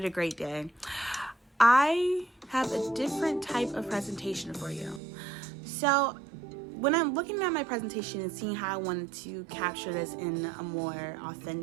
a great day? I have a different type of presentation for you. So, when I'm looking at my presentation and seeing how I wanted to capture this in a more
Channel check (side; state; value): left; drops out; at 5.0 s